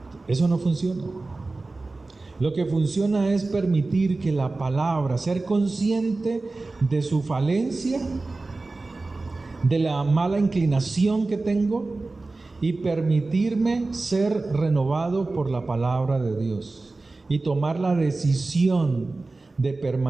Eso no funciona. Lo que funciona es permitir que la palabra, ser consciente de su falencia, de la mala inclinación que tengo, y permitirme ser renovado por la palabra de Dios y tomar la decisión de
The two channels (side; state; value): left; quieter; 3.4 dB